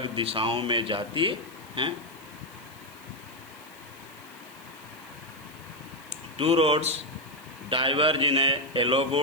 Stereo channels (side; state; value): left; noise; hiss, 23 dB below the sound